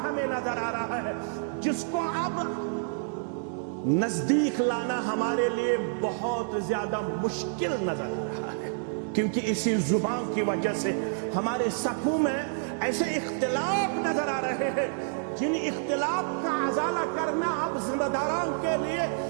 ہمیں نظر آ رہا ہے جس کو اب نزدیک لانا ہمارے لیے بہت زیادہ مشکل نظر آ رہا ہے، کیونکہ اسی زبان کی وجہ سے ہمارے صفوں میں ایسے اختلاف نظر آ رہے ہیں جن اختلاف کا ازالہ کرنا اب ذمہ داران کے لیے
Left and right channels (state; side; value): silent; left; digital silence